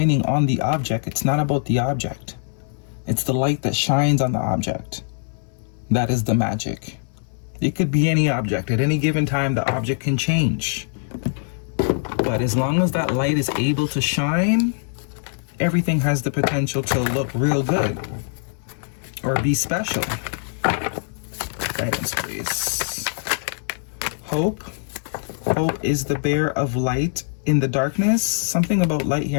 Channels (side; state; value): right; silent; digital silence